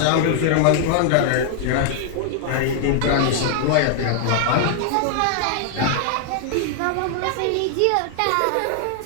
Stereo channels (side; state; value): both; different; correlation 0.00